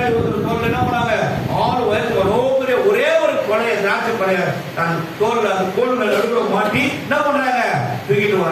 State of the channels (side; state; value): both; identical; correlation 1.00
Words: ஒருத்தர் தோல்ல என்ன பண்ணாங்க, 6 வயசு ஒரே ஒரு கொலைய திராட்சை கொலைய தன் தோல்ல அந்த கோல் நடுவுல மாட்டி என்ன பண்றாங்க, தூக்கிட்டு